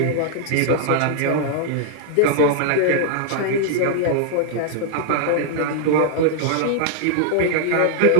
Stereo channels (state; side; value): different; both; correlation -0.01